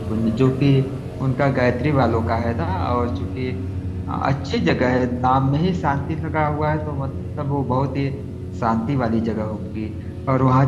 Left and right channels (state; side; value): identical; both; correlation 1.00